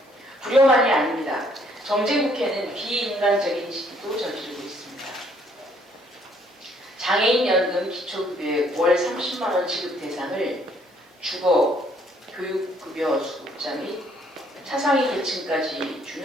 불효만이 아닙니다. 정쟁국회는 비인간적인 시기도 저지르고 있습니다. 장애인 연금 기초급여의 월 30만 원 지급 대상을 주거, 교육급여 수급자 및 차상위 계층까지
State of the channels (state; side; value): normal; both; correlation 0.65